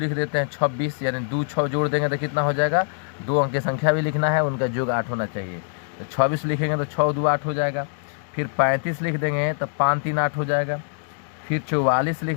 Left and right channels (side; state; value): right; silent; digital silence